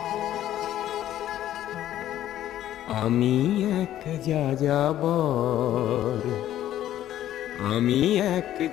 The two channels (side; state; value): right; quieter; 12.4 dB